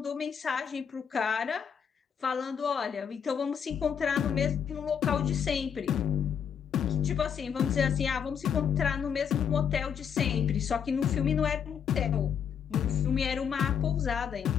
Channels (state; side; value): quieter; right; 7.6 dB